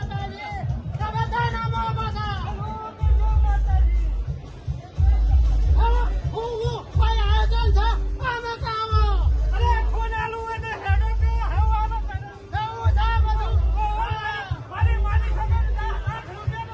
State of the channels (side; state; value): both; identical; correlation 1.00